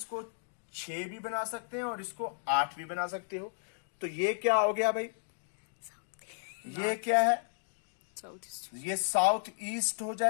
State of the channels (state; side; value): silent; right; digital silence